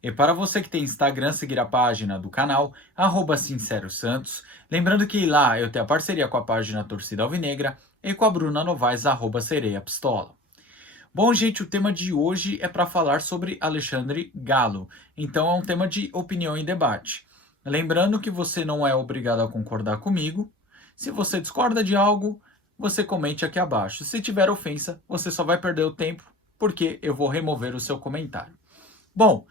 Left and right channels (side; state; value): both; normal; correlation 0.40